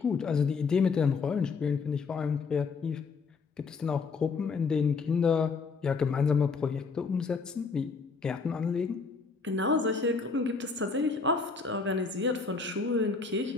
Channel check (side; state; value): right; quieter; 4.7 dB